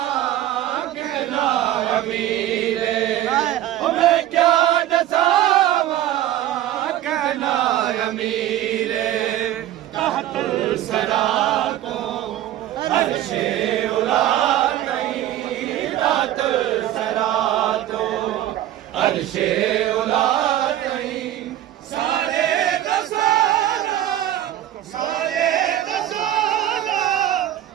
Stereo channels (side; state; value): left; quieter; 12.9 dB